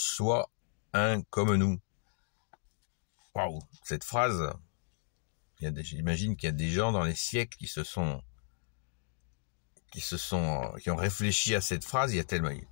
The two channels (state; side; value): silent; right; digital silence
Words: un comme nous. » Waouh, cette phrase, j'imagine qu'il y a des gens dans les siècles qui ont réfléchi à cette phrase. Il y a tellement,